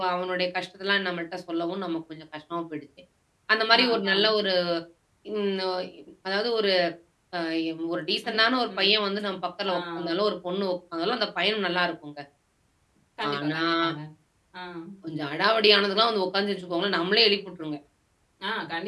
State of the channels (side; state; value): both; identical; correlation 1.00